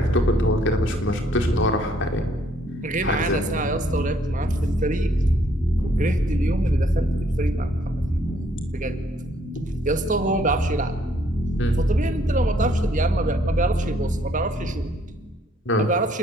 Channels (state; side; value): normal; both; correlation 0.66